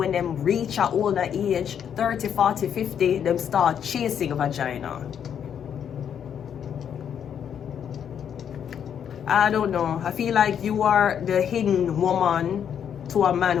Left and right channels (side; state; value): right; quieter; 8.5 dB